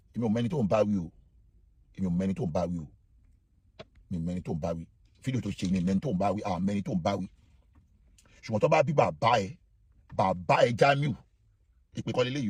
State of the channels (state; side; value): identical; both; correlation 1.00